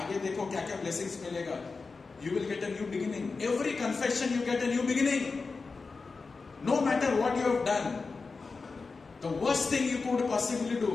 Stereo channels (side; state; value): right; quieter; 4.3 dB